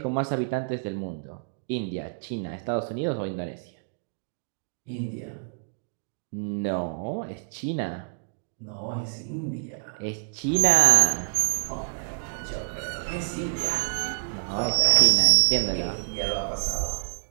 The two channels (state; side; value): silent; left; digital silence